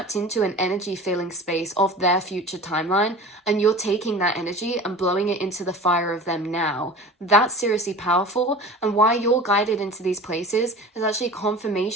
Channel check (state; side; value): normal; both; correlation 0.37